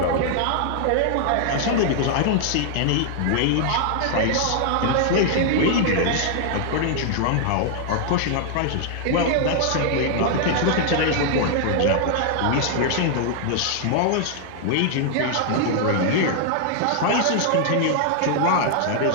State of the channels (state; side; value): different; both; correlation 0.00